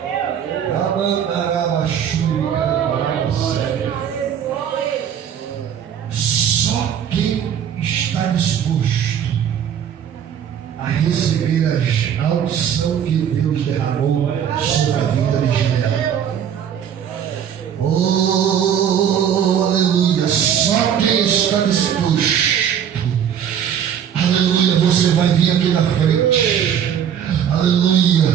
Só quem está disposto a receber a unção que Deus derramou sobre a vida de Gideão. Oh, aleluia. Só quem está disposto, aleluia, você vai vir aqui na frente,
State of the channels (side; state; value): left; quieter; 8.8 dB